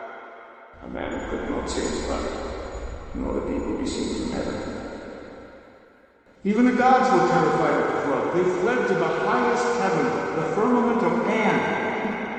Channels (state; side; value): identical; both; correlation 1.00